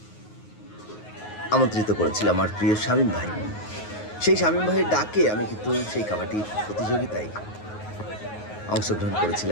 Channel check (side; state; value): right; late; 9.5 ms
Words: আমন্ত্রিত করেছিল আমার প্রিয় শামীম ভাই। সেই শামীম ভাইয়ের ডাকে আমি কিন্তু সেই কাবাডি প্রতিযোগিতায় অংশগ্রহণ